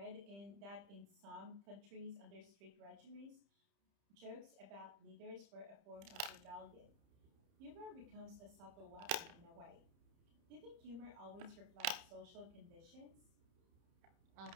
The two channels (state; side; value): late; left; 30 ms